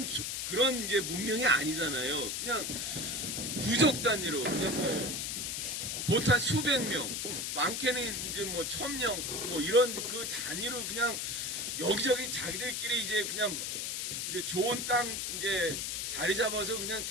이제 문명이 아니잖아요. 그냥 부족 단위로 그냥 뭐 보통 수백 명, 많게는 이제 뭐 1000명 뭐 이런 그 단위로 그냥 여기저기 자기들끼리 이제 그냥 이제 좋은 땅 이제 자리 잡아서 그냥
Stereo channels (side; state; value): left; noise; hiss, 2 dB below the sound